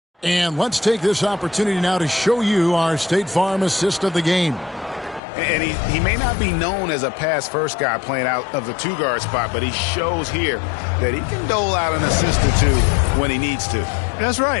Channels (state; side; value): drops out; right; at 5.2 s